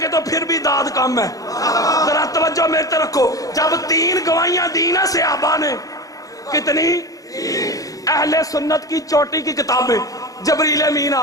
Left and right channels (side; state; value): right; late; 0.17 ms